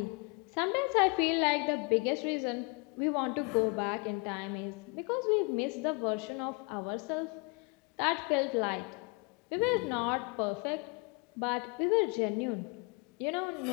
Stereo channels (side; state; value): right; quieter; 31.0 dB